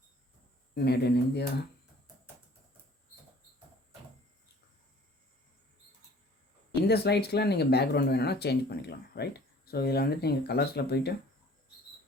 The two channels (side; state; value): both; normal; correlation 0.51